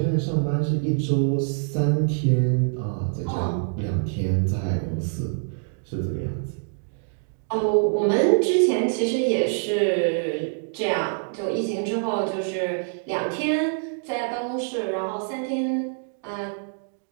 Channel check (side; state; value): left; silent; digital silence